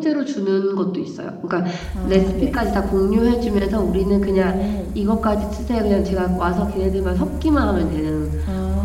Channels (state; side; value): identical; both; correlation 1.00